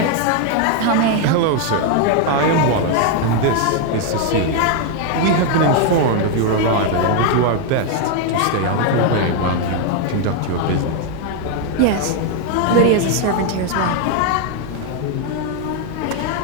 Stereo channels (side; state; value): both; different; correlation 0.01